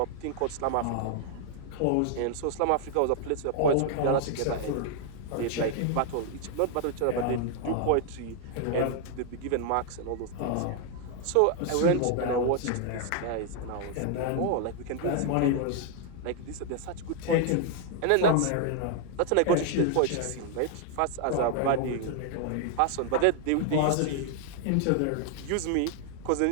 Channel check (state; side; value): different; both; correlation 0.00